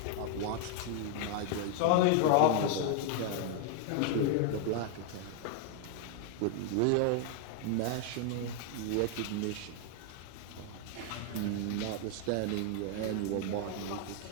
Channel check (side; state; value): both; different; correlation 0.00